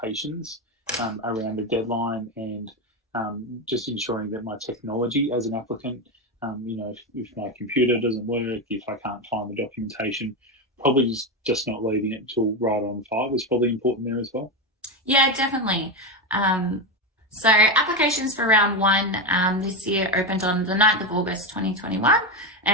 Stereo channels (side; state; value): both; normal; correlation 0.13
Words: around the deadline and just ensuring that my technology as an applicant, if my computer doesn't work, if I can't find the documentation, probably just not leaving it till right on 5 is probably important there as well. Yeah, definitely. So applications for round 1 this year opened on the 9th of August 2021